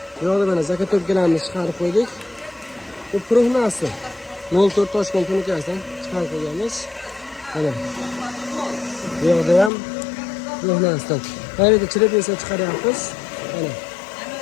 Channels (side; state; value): right; drops out; at 9.7 s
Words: Bu yerda mana zakatobkalarimizni chiqarib qo'ydik. Bu prognasi 04 Toshkent tunikasidan chiqarib qo'yganmiz. Mana. Bu yerda ham prognasidan. Qayerda chirib esa chiqaryapmiz. Mana.